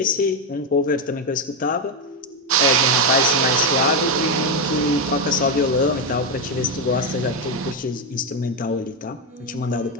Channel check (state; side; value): normal; both; correlation 0.07